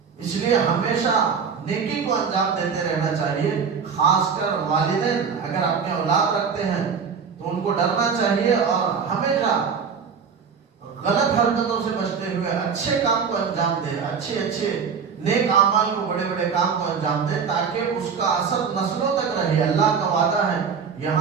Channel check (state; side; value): quieter; left; 6.2 dB